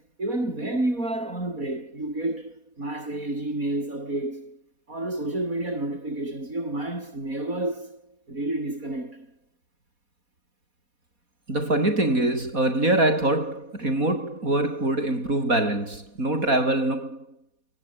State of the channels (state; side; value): late; left; 4.2 ms